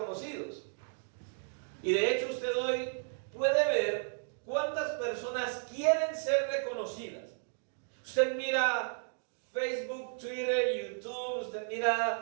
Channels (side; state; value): left; silent; digital silence